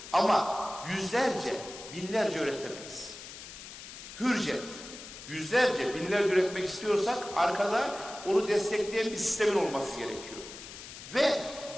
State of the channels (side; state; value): left; noise; hiss, 13 dB below the sound